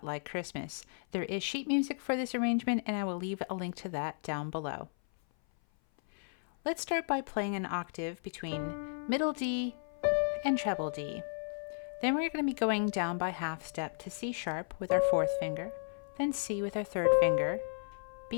Like Christmas. There is sheet music for this arrangement and I will leave a link to that down below. Let's start by playing an octave between middle D and treble D. Then we're going to be going down by half step to C sharp with our fourth finger, then C with our third finger,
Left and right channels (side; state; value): right; silent; 55 dB below the other